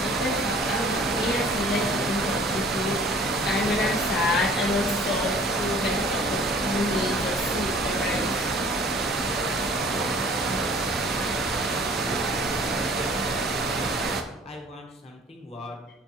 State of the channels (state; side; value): normal; both; correlation 0.51